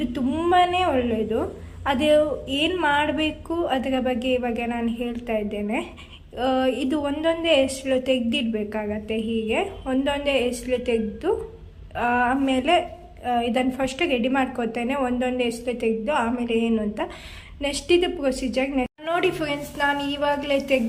ತುಂಬಾ ಒಳ್ಳೆಯದು. ಅದು ಏನು ಮಾಡಬೇಕು ಅದರ ಬಗ್ಗೆ ಇವಾಗ ನಾನು ಹೇಳ್ತಾ ಇದ್ದೇನೆ. ಇದು ಒಂದೊಂದೇ ಎಸ್ಳು ತೆಗೆದಿಡ್ಬೇಕಾಗತ್ತೆ. ಹೀಗೆ ಒಂದೊಂದೇ ಎಸ್ಳು ತೆಗೆದು ಆಮೇಲೆ ಇದನ್ನು ಫಸ್ಟ್ ರೆಡಿ ಮಾಡ್ಕೊತೇನೆ. ಒಂದೊಂದೇ ಎಸ್ಳು ತೆಗೆದು ಆಮೇಲೆ ಏನು ಅಂತ ನೆಕ್ಸ್ಟ್ ಇದು ಪ್ರೊಸೀಜರ್. ನೋಡಿ ಫ್ರೆಂಡ್ಸ್, ನಾನು ಇವಾಗಲೇ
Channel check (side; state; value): both; identical; correlation 1.00